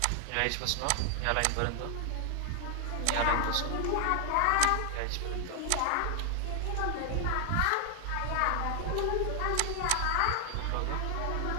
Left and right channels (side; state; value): both; different; correlation 0.00